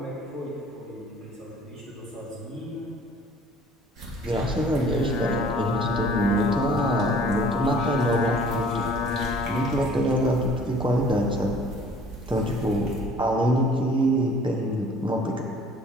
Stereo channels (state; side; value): normal; both; correlation 0.52